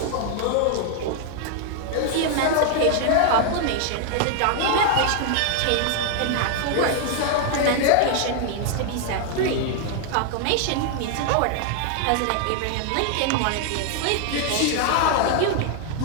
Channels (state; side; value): different; both; correlation 0.00